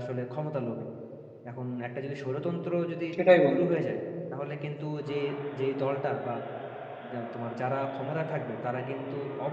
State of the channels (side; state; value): both; identical; correlation 1.00